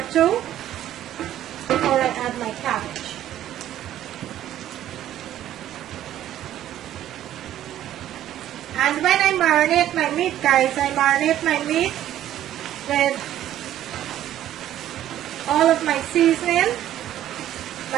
2 before I add my cabbage. And when I marinate my meat, guys, I marinate my meat with all of my seasoning.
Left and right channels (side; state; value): left; quieter; 12.2 dB